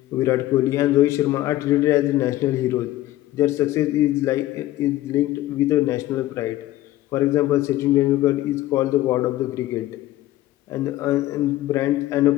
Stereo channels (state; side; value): quieter; right; 15.6 dB